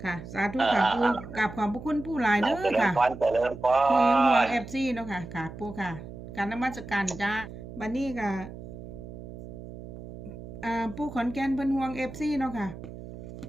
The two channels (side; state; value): right; noise; hum, 13 dB below the sound